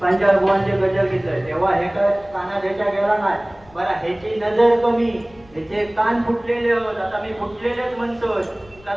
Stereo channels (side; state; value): left; noise; rumble, 26 dB below the sound